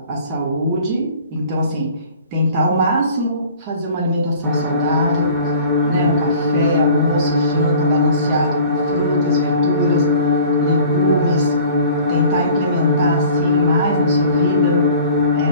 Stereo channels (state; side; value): inverted; both; correlation -0.48